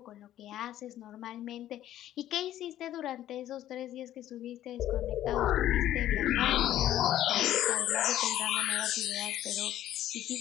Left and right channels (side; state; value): right; quieter; 12.6 dB